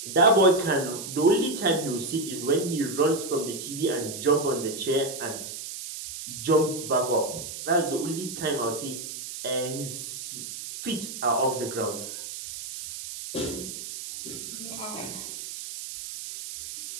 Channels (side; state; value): right; noise; hiss, 9 dB below the sound